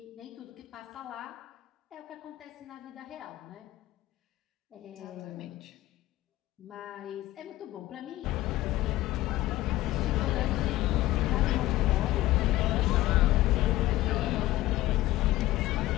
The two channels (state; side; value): quieter; right; 16.4 dB